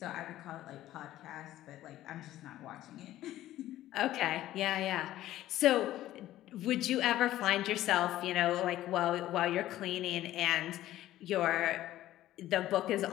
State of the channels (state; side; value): quieter; right; 14.2 dB